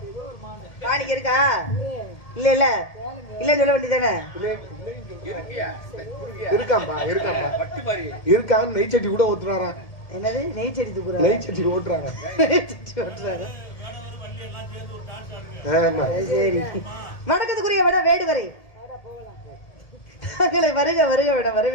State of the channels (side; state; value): right; late; 1.8 ms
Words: மாணிக்கு இருக்கா? இல்ல இல்ல இல்லன்னு சொல்ல வேண்டியதானே? இருக்காம்பா இருக்கான்னு நெய் சட்டி கூட ஓட்டுறாராம். என்னது நெய் செடி தூக்குறாரு? நெய் சட்டி ஓட்டுறாங்க. சரி, வணக்கத்துக்குரிய விட வேடுவரை தங்களை வருக வருக விட